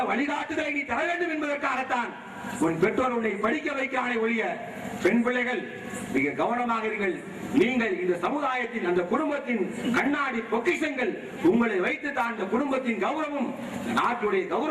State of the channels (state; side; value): identical; both; correlation 1.00